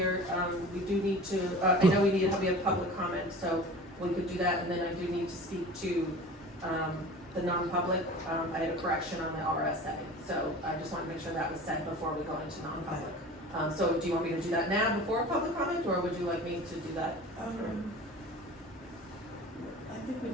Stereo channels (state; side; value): normal; both; correlation 0.39